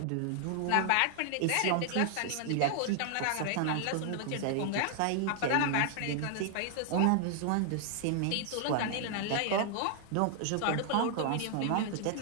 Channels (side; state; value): both; different; correlation 0.00